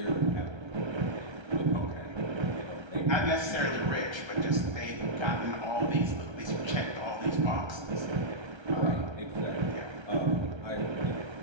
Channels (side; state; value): left; late; 1.3 ms